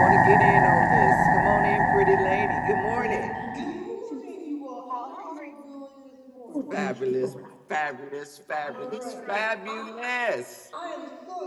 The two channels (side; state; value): both; identical; correlation 1.00